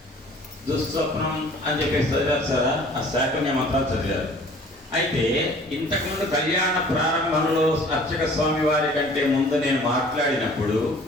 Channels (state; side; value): normal; both; correlation 0.51